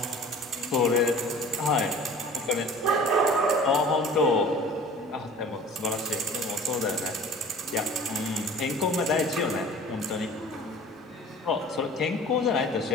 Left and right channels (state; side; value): normal; both; correlation 0.44